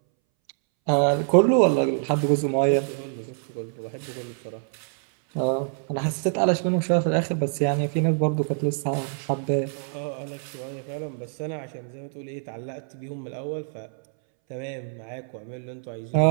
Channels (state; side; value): silent; left; 61 dB below the other